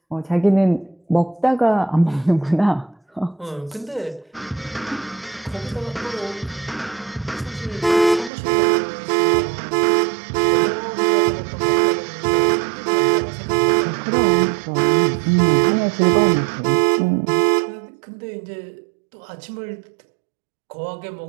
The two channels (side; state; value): left; drops out; at 8.3 s